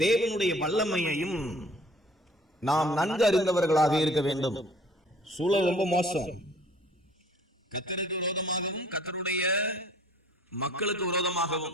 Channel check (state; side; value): normal; both; correlation 0.53